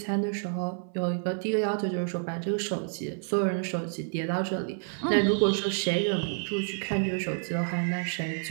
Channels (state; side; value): silent; left; 59 dB below the other